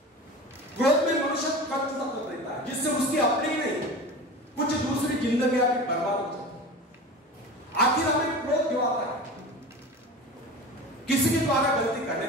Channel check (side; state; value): both; normal; correlation 0.33